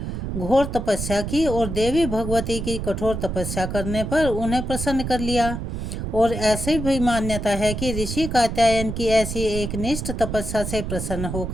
घोर तपस्या की और देवी भगवती की कठोर तपस्या करने पर उन्हें प्रसन्न कर लिया। और ऐसी भी मान्यता है कि ऋषि कात्यायन की ऐसी एक निष्ठ तपस्या से प्रसन्न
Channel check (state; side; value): noise; right; rumble, 4 dB below the sound